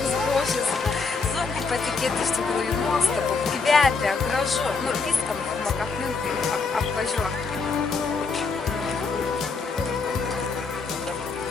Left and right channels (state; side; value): quieter; right; 4.6 dB